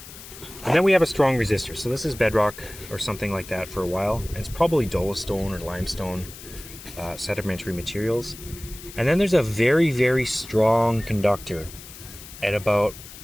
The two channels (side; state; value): left; noise; hiss, 16 dB below the sound